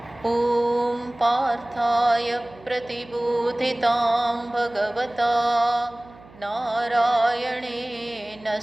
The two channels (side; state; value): right; noise; hum, 23 dB below the sound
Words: ॐ पार्थाय प्रतिबोधितां भगवता नारायणेन